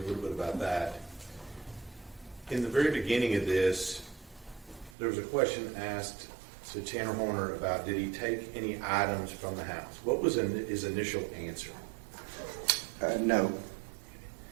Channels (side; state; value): left; drops out; at 5.0 s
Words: a little bit about that, in the very beginning of this, there was a question asked to Tanner Horner about did he take any items from the house? What was his initial answer? No.